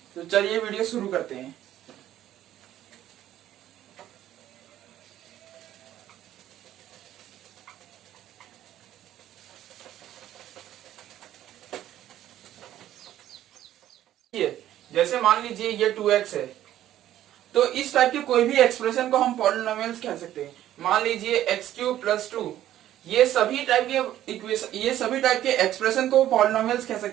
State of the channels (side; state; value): left; quieter; 12.5 dB